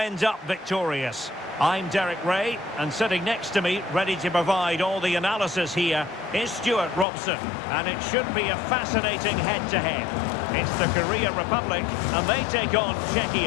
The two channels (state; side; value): drops out; right; at 7.1 s